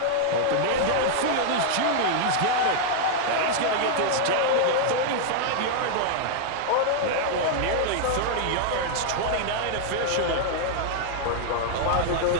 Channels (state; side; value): different; both; correlation 0.00